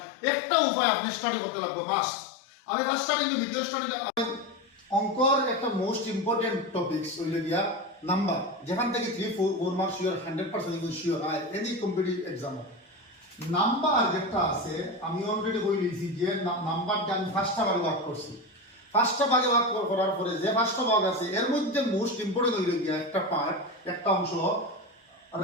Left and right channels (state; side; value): normal; both; correlation 0.21